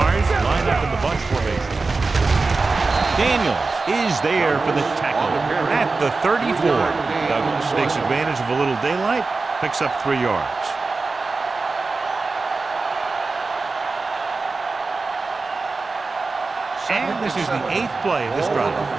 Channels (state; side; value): quieter; left; 3.9 dB